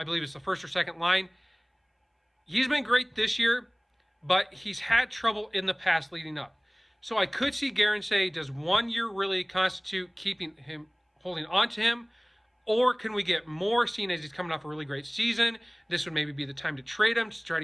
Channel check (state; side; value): identical; both; correlation 1.00